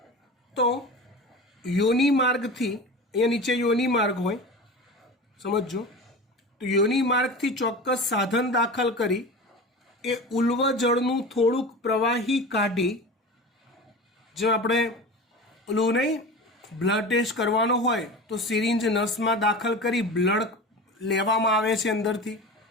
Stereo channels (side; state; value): both; normal; correlation 0.32